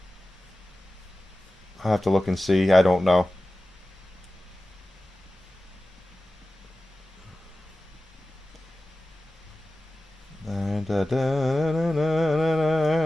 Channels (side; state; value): both; normal; correlation 0.95